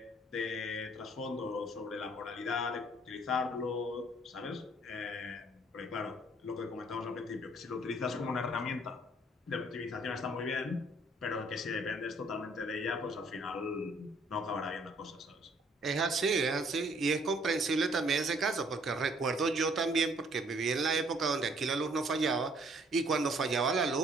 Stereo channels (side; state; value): both; normal; correlation 0.62